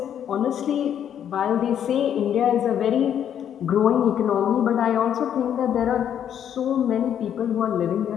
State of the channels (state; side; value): quieter; right; 9.4 dB